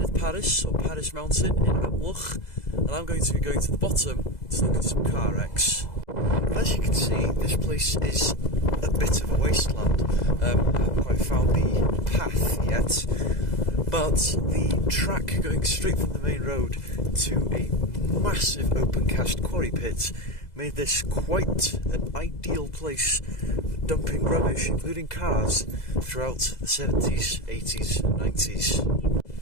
Parys, or Parys Mountain in Amlwch, and I'm going to be going to the bottom to look at some car wrecks. As you can see, this place is a bit of a wasteland. I haven't quite found the path yet, but the track going straight from the main road to a massive open cast quarry pit made this quite an ideal place for dumping rubbish, including cars, throughout the 70s, 80s and 90s.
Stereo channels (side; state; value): right; late; 2.0 ms